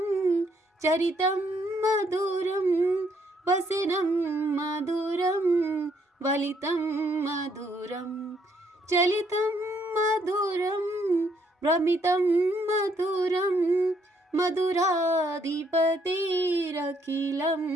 चरितं मधुरं वसनं मधुरं वलितं मधुरं चलितं मधुरं भ्रमितं मधुरं मधुराधिपतिरखिलं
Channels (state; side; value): normal; both; correlation 0.70